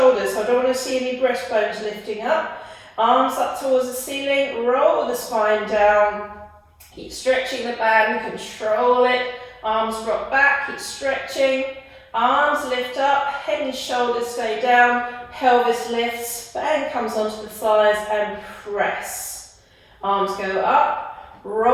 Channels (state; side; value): identical; both; correlation 1.00